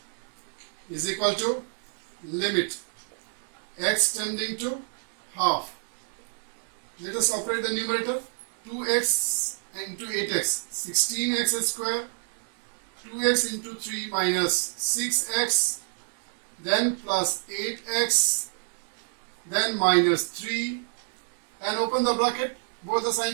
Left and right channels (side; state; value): left; silent; digital silence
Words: Is equal to limit x tending to half. Let us operate the numerator. 2x into 8x, 16x square, 2x into 3 minus 6x, then plus 8x, then minus 3, and open the bracket, both the